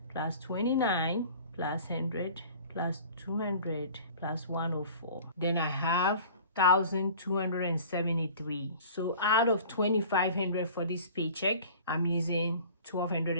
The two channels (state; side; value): inverted; both; correlation -0.45